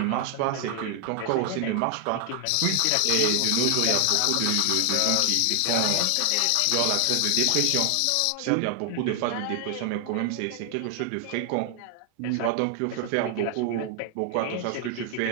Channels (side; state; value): both; different; correlation 0.00